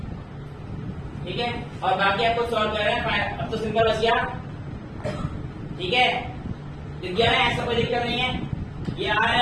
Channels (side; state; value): both; identical; correlation 1.00